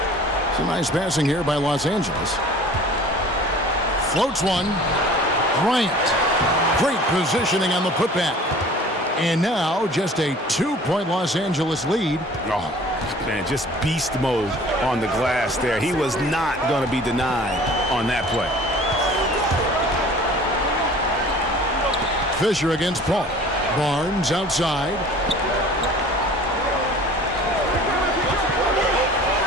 Some nice passing here by Los Angeles. Floats one. Bryant. Great positioning on the putback. And now just a 2-point Los Angeles lead. Oh, man, just beast mode on the glass there. He was not going to be denied on that play. Fisher against Paul. Barnes outside.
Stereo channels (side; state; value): both; normal; correlation 0.46